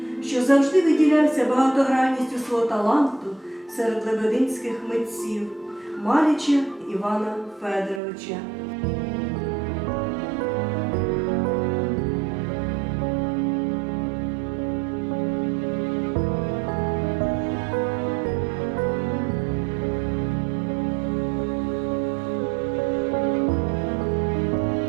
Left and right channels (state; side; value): drops out; left; at 8.0 s